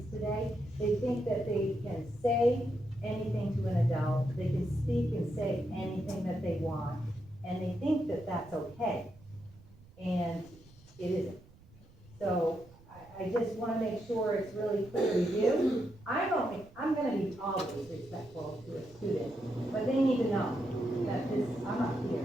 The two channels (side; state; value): right; noise; rumble, 24 dB below the sound